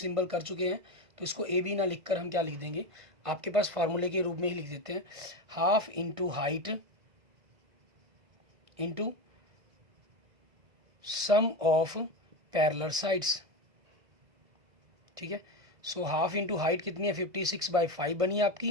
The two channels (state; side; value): late; left; 1.6 ms